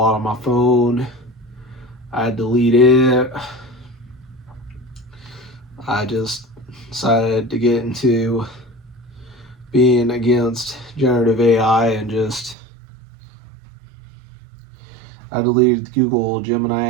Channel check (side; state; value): left; drops out; at 12.6 s